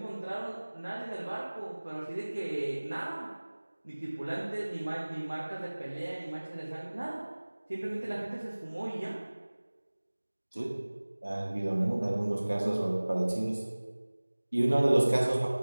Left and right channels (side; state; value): both; inverted; correlation -1.00